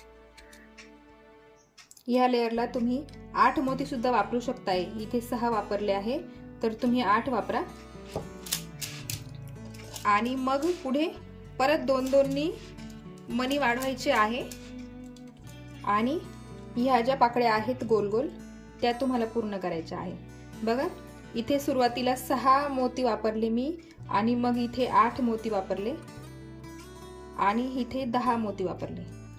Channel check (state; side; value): identical; both; correlation 1.00